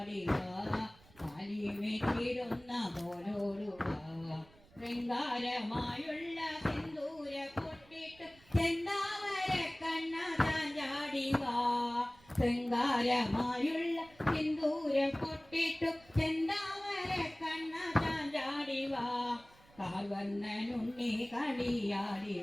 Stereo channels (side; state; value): right; noise; rumble, 26 dB below the sound